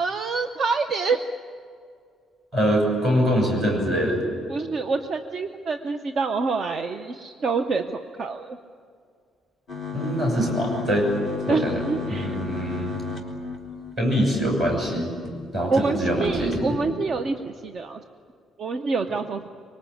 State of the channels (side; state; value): both; normal; correlation 0.72